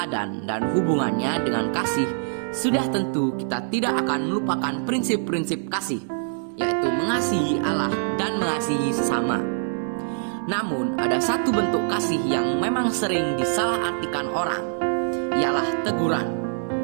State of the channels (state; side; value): silent; left; 60 dB below the other